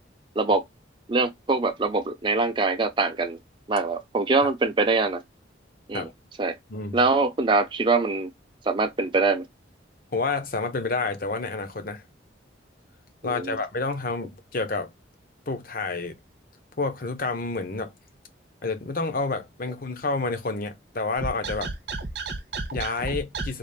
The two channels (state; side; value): normal; both; correlation 0.12